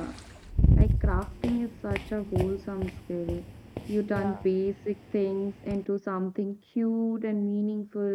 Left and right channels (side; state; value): both; identical; correlation 1.00